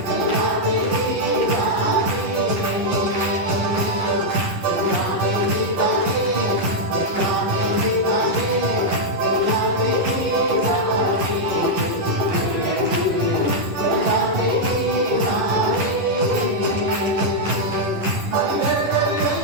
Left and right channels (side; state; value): left; late; 11 ms